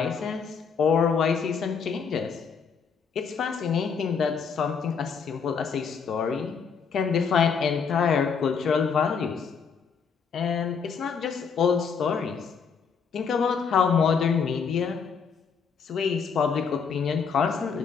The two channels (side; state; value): right; quieter; 6.1 dB